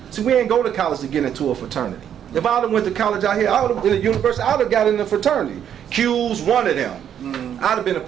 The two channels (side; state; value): left; quieter; 9.3 dB